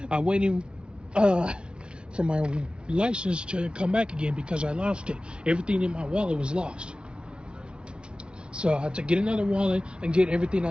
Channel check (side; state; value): left; late; 0.056 ms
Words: I'm waiting for my license to come back again because I lost it. Everything in my wallet was lost. So I had to get another wallet and get everything